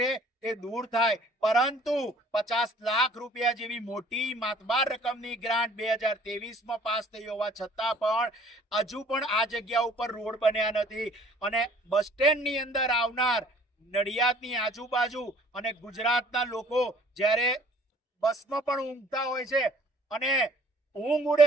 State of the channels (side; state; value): both; normal; correlation 0.55